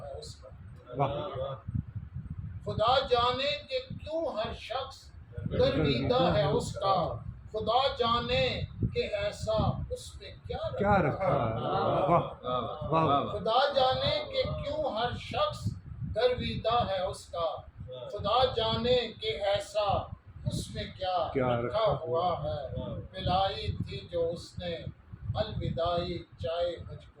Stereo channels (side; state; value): both; identical; correlation 1.00